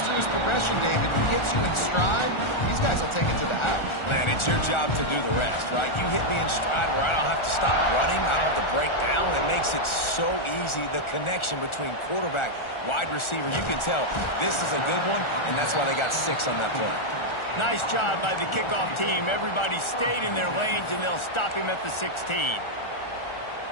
through his progression, David, and gets you in stride, these guys will take it to the house. Man, it's your job to do the rest, right? You hit me in stride where I don't have to stop running. I don't have to break down. It makes it so easy. The connection between quarterback, wide receiver, you can tell this is a good one, and that's why they got 6 on that play. Nice job by the kickoff team. Everybody stayed in their lanes, and they'll stop him at the 16.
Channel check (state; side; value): late; right; 1.4 ms